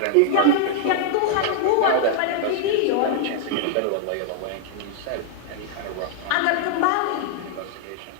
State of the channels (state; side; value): different; both; correlation 0.00